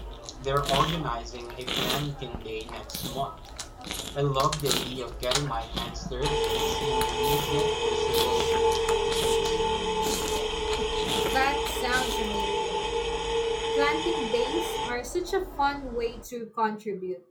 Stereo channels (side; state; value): both; identical; correlation 1.00